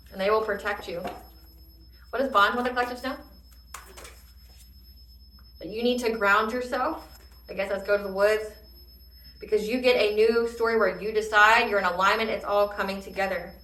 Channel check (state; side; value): identical; both; correlation 1.00